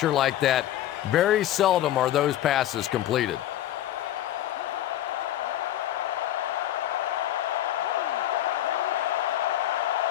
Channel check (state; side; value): quieter; right; 12.8 dB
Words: like that, very seldom are those passes completed.